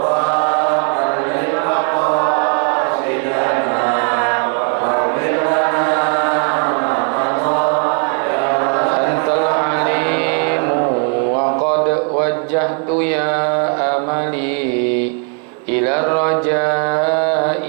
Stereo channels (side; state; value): left; quieter; 37.0 dB